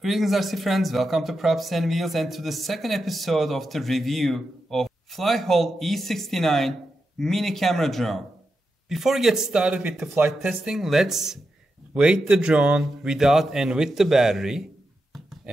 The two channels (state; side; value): normal; both; correlation 0.88